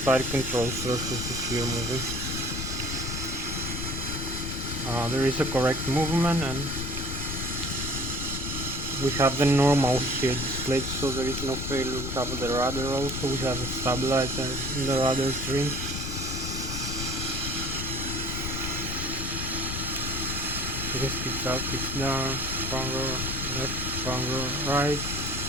control surfaces here moving. there is a correct movement, and we have the normal here displayed, so there is no failure. We have the rudder also, we have a stabilizer in the rudder trim. This speeds up, speeds down, bunker left, bunker right.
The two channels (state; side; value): noise; left; rumble, 4 dB below the sound